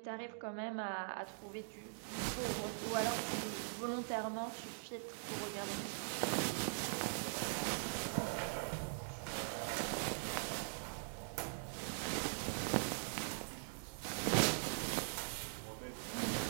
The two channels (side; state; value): left; silent; digital silence